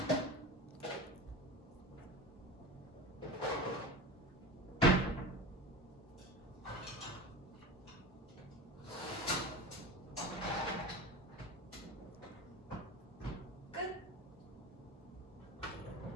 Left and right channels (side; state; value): both; normal; correlation 0.29